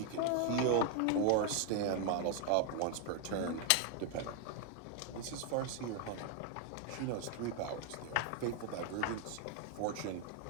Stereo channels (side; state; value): both; different; correlation 0.01